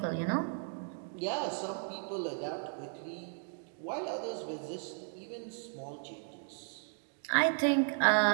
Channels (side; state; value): left; silent; 54 dB below the other